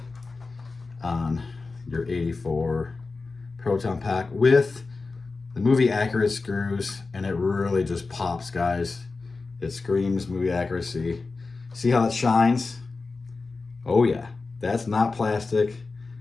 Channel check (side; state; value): right; quieter; 3.9 dB